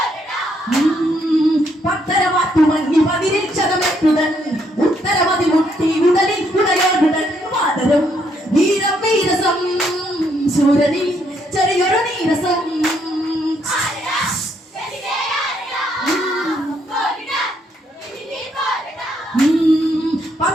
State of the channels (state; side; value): normal; both; correlation 0.72